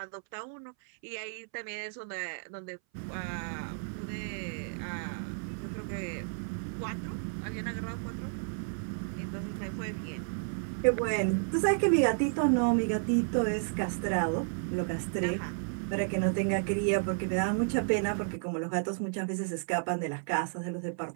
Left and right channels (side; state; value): left; silent; 56 dB below the other